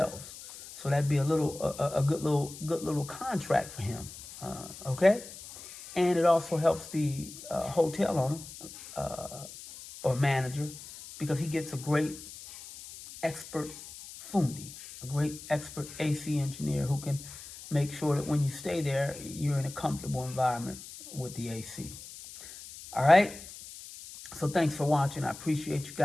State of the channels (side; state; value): left; noise; hiss, 14 dB below the sound